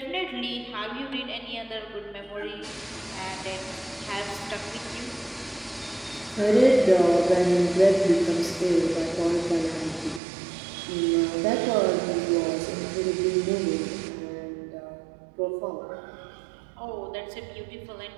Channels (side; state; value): left; drops out; at 10.2 s